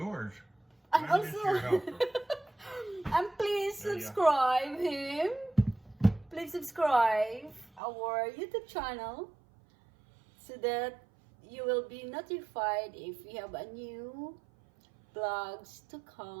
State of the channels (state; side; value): drops out; left; at 7.8 s